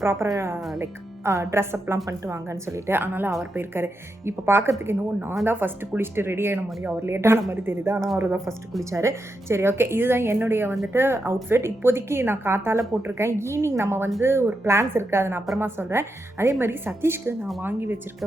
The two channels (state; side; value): normal; both; correlation 0.85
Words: ப்ராப்பராக லைக் ட்ரெஸ் அப்லாம் பண்ணிட்டு வாங்கன்னு சொல்லிட்டு. அதனால் அவர் போயிருக்காரு. இப்போ பார்க்கறதுக்கு என்னவோ நான் தான் ஃபஸ்ட்டு குளிச்சுட்டு ரெடி ஆகின மாதிரி, அவர் லேட்டான மாதிரி தெரியுது. ஆனால் அவர் தான் ஃபஸ்ட்டு குளிச்சார். சரி, ஓகே. இதுதான் என்னுடைய வந்துட்டு அவுட்ஃபிட். இப்போதைக்கு நான் காத்தால் போட்டிருக்கேன். ஈவினிங் நம்ம வந்து ஒரு பிளான்ஸ் இருக்குது, அதை நான் அப்புறமா சொல்கிறேன். அதே மாதிரி சதீஷ்க்கு நான் வாங்கி